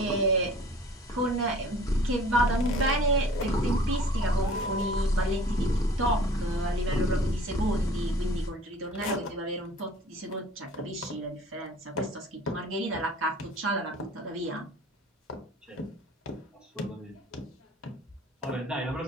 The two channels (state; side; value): normal; both; correlation 0.48